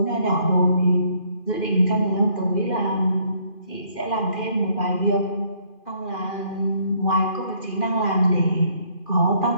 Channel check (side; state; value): right; late; 2.4 ms